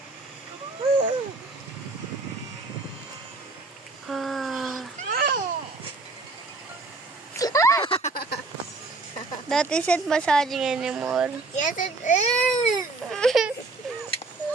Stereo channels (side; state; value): left; quieter; 3.6 dB